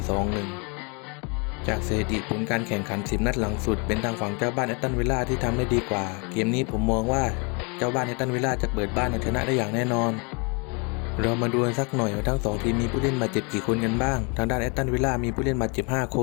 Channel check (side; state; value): right; quieter; 32.6 dB